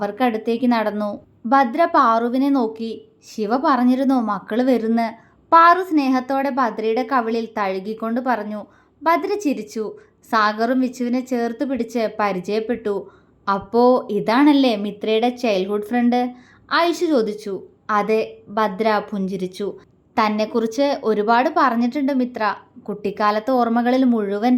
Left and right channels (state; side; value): identical; both; correlation 1.00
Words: നടന്നു. ഭദ്ര പാറുവിനെ നോക്കി. ശിവ പറഞ്ഞിരുന്നു മക്കള് വരുന്ന്. പാറു സ്നേഹത്തോടെ ഭദ്രയുടെ കവിളിൽ തഴുകിക്കൊണ്ട് പറഞ്ഞു. ഭദ്ര ചിരിച്ചു. സാഗറും വിച്ചുവിനെ ചേർത്ത് പിടിച്ച് പരിചയപ്പെട്ടു. അപ്പോ ഇതാണല്ലേ മിത്രയുടെ ചൈൽഡ്ഹുഡ് ഫ്രണ്ട്? ഐഷു ചോദിച്ചു. അതെ, ഭദ്ര പുഞ്ചിരിച്ചു. തന്നെക്കുറിച്ച് ഒരുപാട് പറഞ്ഞിട്ടുണ്ട് മിത്ര. കുട്ടിക്കാലത്തെ ഓർമ്മകളിൽ മുഴുവൻ